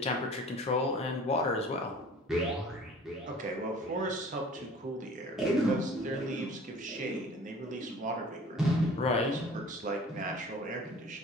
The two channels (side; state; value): both; normal; correlation 0.46